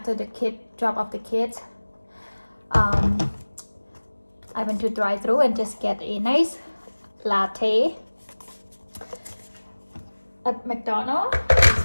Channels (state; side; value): inverted; both; correlation -1.00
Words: the kid drop off the kids. I went to drive-thru and just get a nice latte at McDonald's